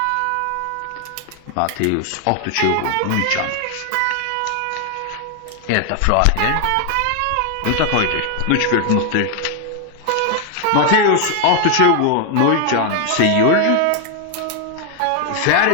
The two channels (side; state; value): both; different; correlation 0.00